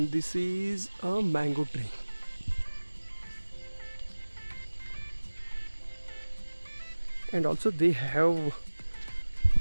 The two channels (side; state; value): both; inverted; correlation -1.00